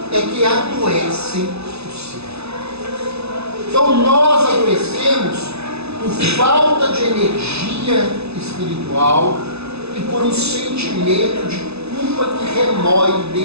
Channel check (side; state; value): left; late; 0.79 ms